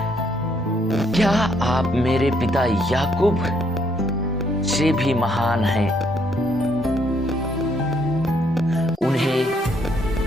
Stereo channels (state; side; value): normal; both; correlation 0.71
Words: क्या आप मेरे पिता याकूब से भी महान हैं?